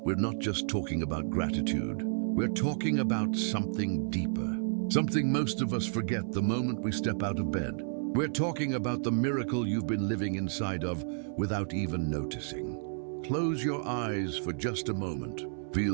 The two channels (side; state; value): left; silent; 57 dB below the other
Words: not just talking about gratitude. We're talking about something deeper, something most of us forget the moment we step out of bed. We're talking about the miracle you've been living inside of without even noticing. Close your eyes for just a moment.